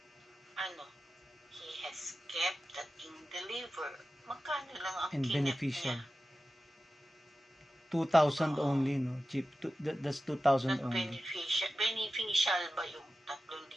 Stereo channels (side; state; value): both; normal; correlation 0.93